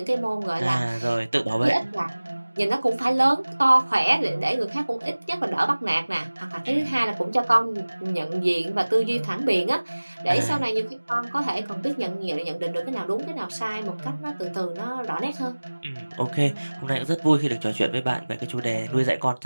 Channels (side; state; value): both; inverted; correlation -1.00